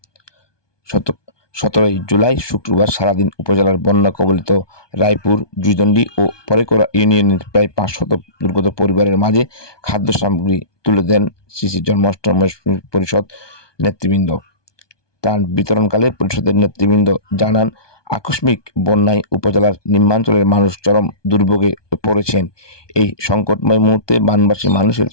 17 জুলাই শুক্রবার সারাদিন উপজেলার বন্যা কবলিত রায়পুর, জুইদণ্ডী ও পরেকরা ইউনিয়নের প্রায় 500 দুর্গত পরিবারের মাঝে খাদ্য সামগ্রী তুলে দেন শ্রী শ্রী জন্মাষ্টমী পরিষদ নেতৃবৃন্দ। ত্রাণ বিতরণকালে পরিষদের নেতৃবৃন্দ জানান, আকস্মিক বন্যায় উপজেলার নিম্নাঞ্চলের মানুষ চরম দুর্ভোগে পড়েছেন। এই সংকটময় মুহূর্তে বানবাসী মানুষের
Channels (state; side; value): late; right; 1.2 ms